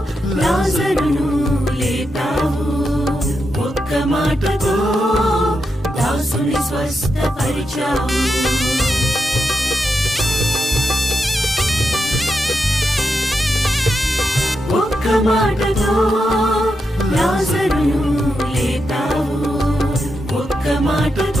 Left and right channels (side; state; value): both; normal; correlation 0.86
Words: లాజరును లేపావు, ఒక్క మాటతో దాసుని స్వస్థపరిచావు. ఒక్క మాటతో లాజరును లేపావు, ఒక్క